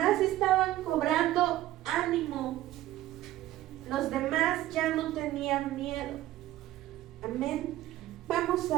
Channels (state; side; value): quieter; left; 14.8 dB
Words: estaban cobrando ánimo. Los demás ya no tenían miedo. Amén. Vamos